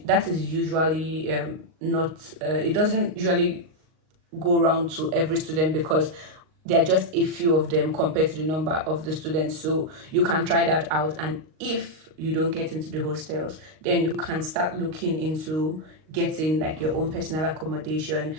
is usually not. It doesn't usually go around to every student, because there are just a few of them compared to the number of the students. So you can try that out, and if you don't get into the hostels, then you can start looking into getting like your own personal accommodation,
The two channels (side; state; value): left; late; 38 ms